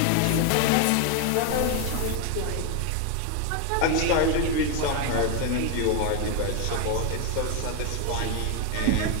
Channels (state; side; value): different; both; correlation 0.01